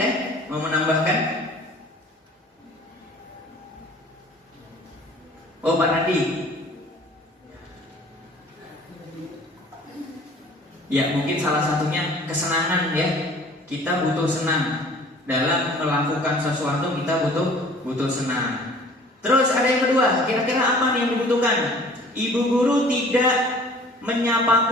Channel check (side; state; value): both; normal; correlation 0.50